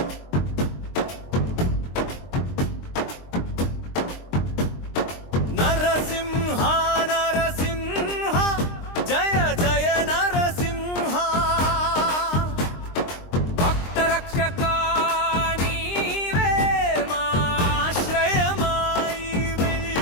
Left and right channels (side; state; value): right; late; 23 ms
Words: నరసింహ నరసింహ జయ జయ నరసింహ. భక్త రక్షక నీవే మా ఆశ్రయమాయివే.